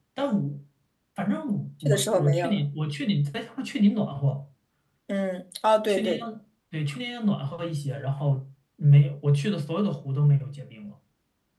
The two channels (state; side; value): identical; both; correlation 1.00